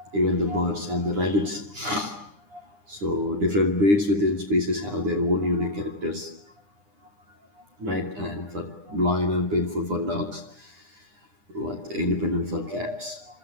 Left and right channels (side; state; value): left; late; 9.9 ms